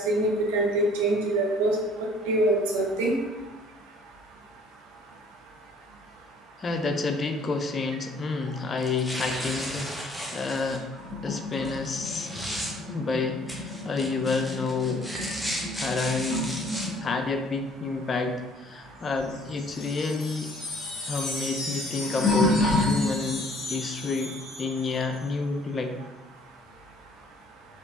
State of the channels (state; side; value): normal; both; correlation 0.57